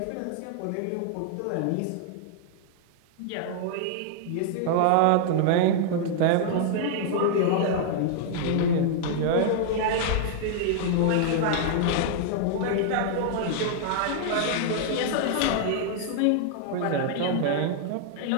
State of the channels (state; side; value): different; both; correlation -0.01